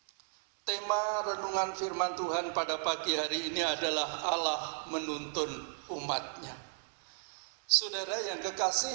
tema renungan firman Tuhan pada pagi hari ini adalah Allah menuntun umat-Nya. Saudara yang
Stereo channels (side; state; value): left; silent; 55 dB below the other